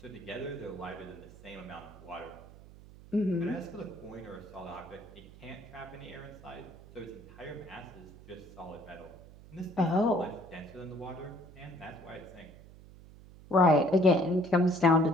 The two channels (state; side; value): noise; right; hum, 19 dB below the sound